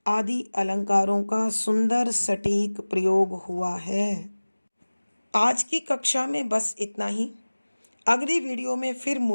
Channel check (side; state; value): both; inverted; correlation -1.00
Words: आदि अलंकारों का सुंदर सटीक प्रयोग हुआ है। आज की कक्षा में बस इतना ही। अगली वीडियो में फिर